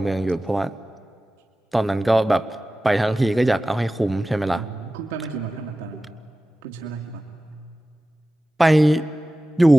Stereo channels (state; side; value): normal; both; correlation 0.95